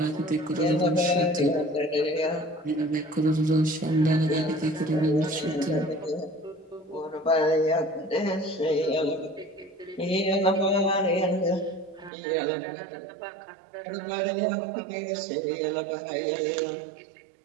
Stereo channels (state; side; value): drops out; left; at 12.1 s